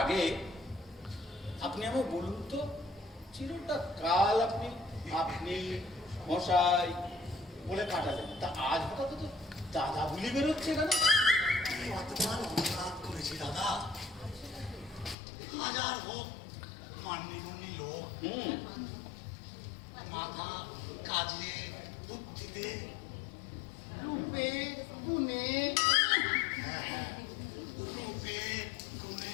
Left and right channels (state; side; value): drops out; right; at 15.2 s